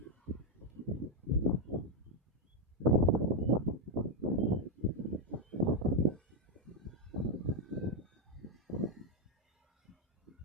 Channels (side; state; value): both; normal; correlation 0.03